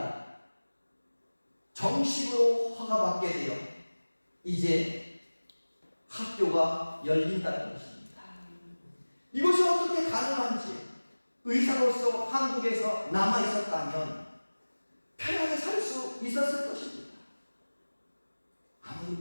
정식으로 허가받게 되어 이제 학교가 열린다는 것입니다. 이것이 어떻게 가능한지 의사로서 한국에서 남아있었다면 편하게 살 수 있었을 것입니다.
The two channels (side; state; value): both; inverted; correlation -1.00